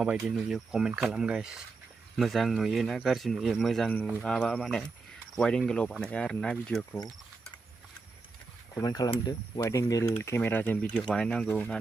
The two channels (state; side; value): quieter; left; 4.1 dB